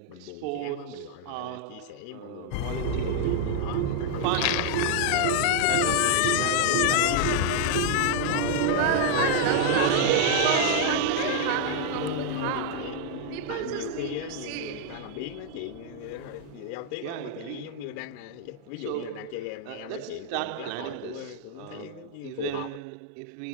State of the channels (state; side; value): different; both; correlation 0.00